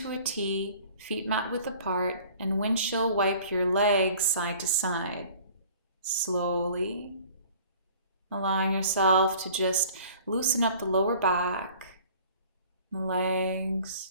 a T, feet mat width apart, and windshield wipe your legs side to side. Slowly. Allowing yourself to just loosen up the lower back, the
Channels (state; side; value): inverted; both; correlation -0.50